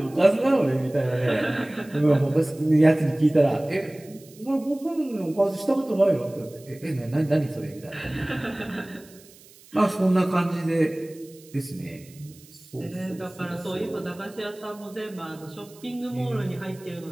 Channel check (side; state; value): right; noise; hiss, 24 dB below the sound